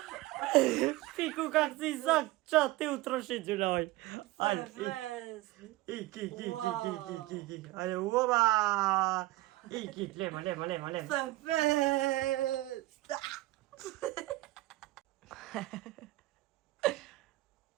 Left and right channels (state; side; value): quieter; left; 18.3 dB